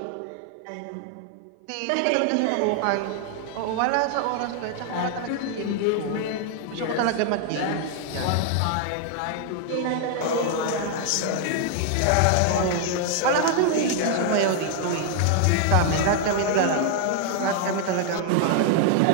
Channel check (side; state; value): both; different; correlation 0.00